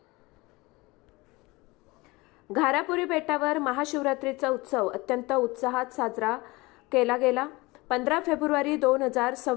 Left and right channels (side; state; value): right; quieter; 23.0 dB